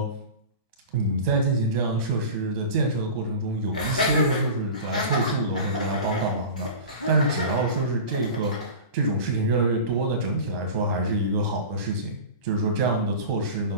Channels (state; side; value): inverted; both; correlation -0.33